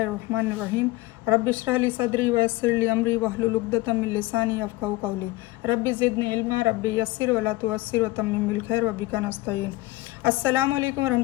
रहमानिर रहीम रब्बि इश्रह ली सदरी व यस्सिर ली अमरी वहलुल उक़दतम मिन लिसानी यफ़क़हू क़ौली रब्बि ज़िदनी इल्मा रब्बि यस्सिर वला तुअस्सिर व तम्मिम बिल खैर व बिका नस्तईन। अस्सलामु अलैकुम व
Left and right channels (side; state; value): right; quieter; 19.5 dB